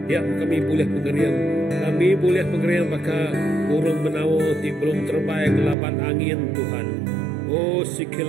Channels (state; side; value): drops out; left; at 5.8 s